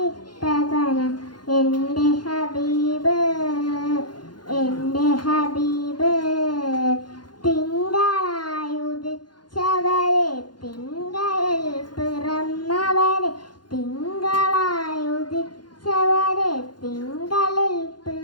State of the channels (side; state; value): right; late; 0.71 ms